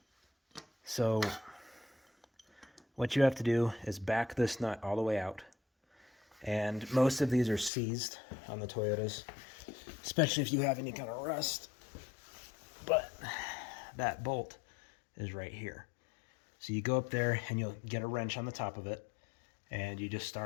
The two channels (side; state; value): right; drops out; at 7.7 s